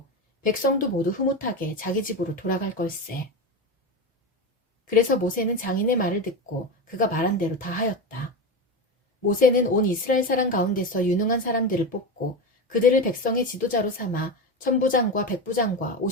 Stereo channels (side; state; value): both; normal; correlation 0.19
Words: 백성도 모두 흐뭇하게 자기 집으로 돌아갈 걸세. 그래서 모세는 장인의 말을 듣고 그가 말한 대로 다 하였다. 모세는 온 이스라엘 사람 가운데서 유능한 사람들을 뽑고 그들을 백성의 지도자로 삼아 천부장과 백부장과